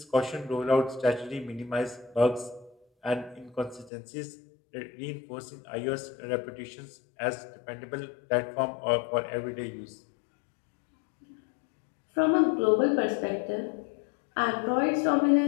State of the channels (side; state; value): right; drops out; at 3.9 s